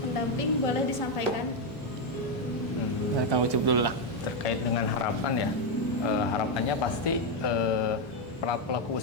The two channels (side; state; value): both; normal; correlation 0.04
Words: boleh disampaikan? Kamu coba dulu lah. Terkait dengan harapan ya, harapannya pasti para pelaku